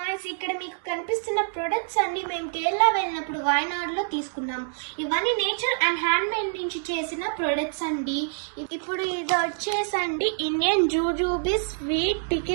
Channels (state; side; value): silent; left; digital silence